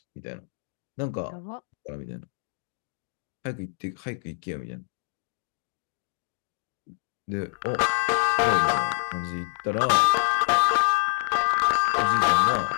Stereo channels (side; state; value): right; silent; digital silence